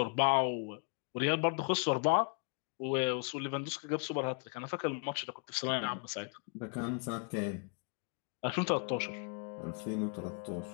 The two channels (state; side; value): quieter; right; 39.2 dB